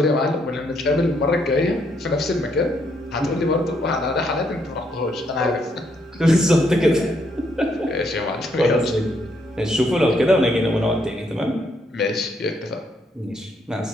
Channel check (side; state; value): both; normal; correlation 0.74